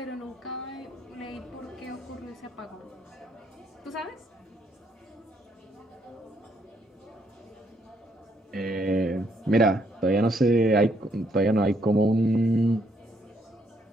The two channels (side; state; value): both; normal; correlation 0.71